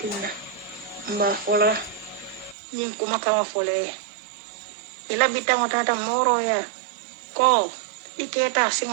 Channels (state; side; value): drops out; left; at 2.6 s